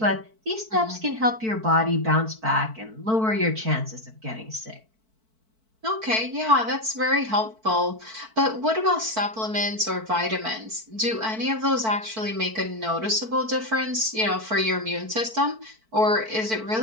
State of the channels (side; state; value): left; late; 4.5 ms